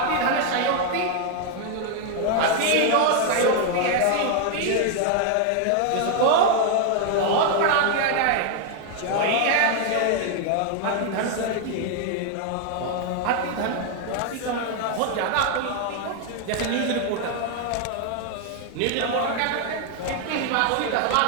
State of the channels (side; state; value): both; different; correlation 0.00